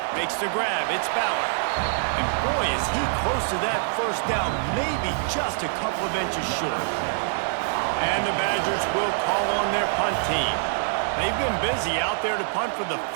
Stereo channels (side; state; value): left; silent; digital silence